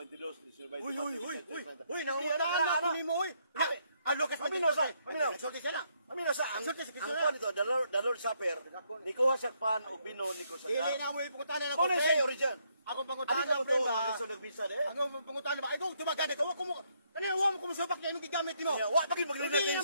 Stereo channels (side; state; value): both; inverted; correlation -0.73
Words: 19, Uy, nangungutaan na mo, uy. Ang Lucas, Paminaw sa, paminaw. Nagsulti siya na. Amino sa ang Nagsulti si Kristo ang na. kuha nito, the Lord Supper, ni kuha siya pan o bino ni ko sa Dili na mo ipungutan na Kung ako. siya original. Akong Ano pangutan ka na mo to, ba? ang nagbisa de? Akong pangutan na ba? Ikaw, tumagana ka. Wako mo. Kanina, wa mo kumusupak na yung gigamit mo. Wa pagin maglinatin Dili na